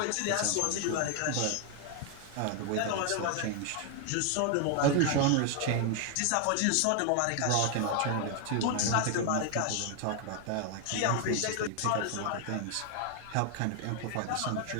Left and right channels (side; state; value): both; different; correlation 0.01